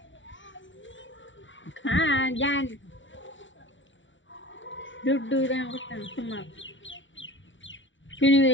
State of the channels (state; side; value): late; right; 0.55 ms